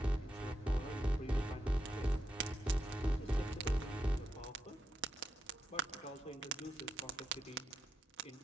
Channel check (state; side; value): normal; both; correlation 0.85